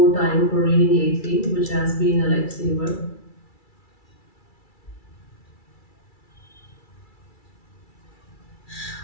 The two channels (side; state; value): right; late; 2.3 ms